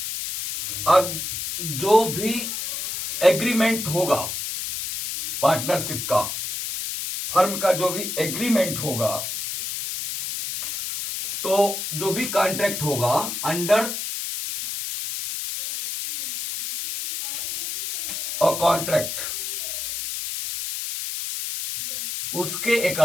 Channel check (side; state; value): left; noise; hiss, 5 dB below the sound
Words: अब जो भी एग्रीमेंट होगा पार्टनरशिप का, फर्म का जो भी एग्रीमेंट होगा, तो जो भी कॉन्ट्रैक्ट होगा अंडर और कॉन्ट्रैक्ट, उसके